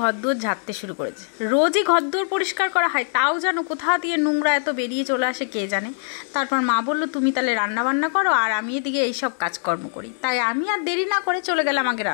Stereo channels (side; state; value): right; silent; 64 dB below the other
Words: ঘরদোর ঝাড়তে শুরু করেছে। রোজই ঘরদোর পরিষ্কার করা হয়, তাও যেন কোথা দিয়ে নোংরা এত বেরিয়ে চলে আসে কে জানে। তারপর মা বলল তুমি তাহলে রান্নাবান্না করো আর আমি এদিকে এইসব কাজকর্ম করি। তাই আমি আর দেরি না করে চলে গেলাম আগে